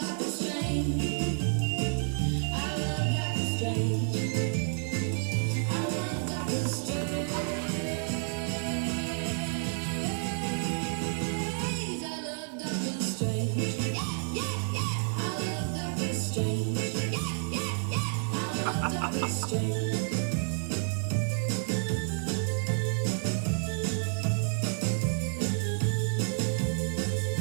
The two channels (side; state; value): left; silent; 58 dB below the other